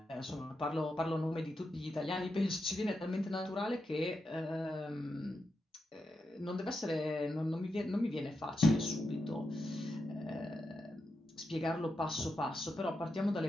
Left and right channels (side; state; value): both; normal; correlation 0.86